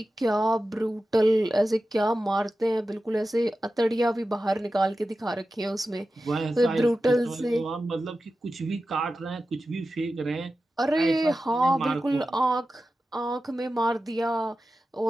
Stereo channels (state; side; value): normal; both; correlation 0.93